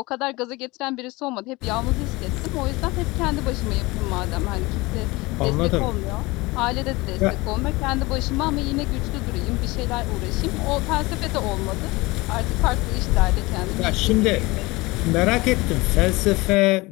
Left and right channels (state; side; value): quieter; right; 22.5 dB